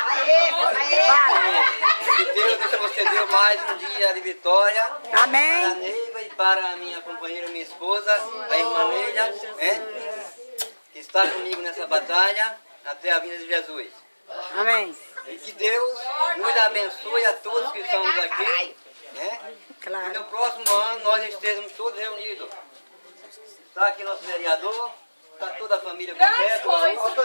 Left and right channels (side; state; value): both; inverted; correlation -1.00